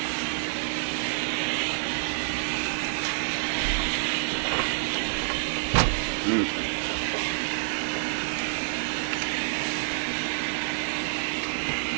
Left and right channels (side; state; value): left; silent; digital silence